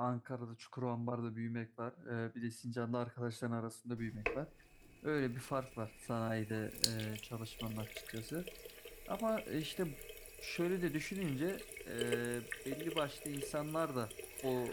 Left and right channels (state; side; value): identical; both; correlation 1.00